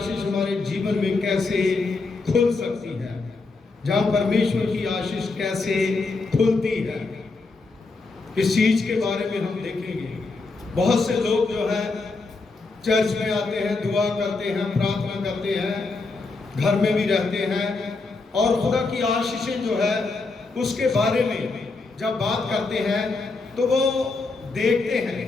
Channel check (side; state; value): right; quieter; 3.8 dB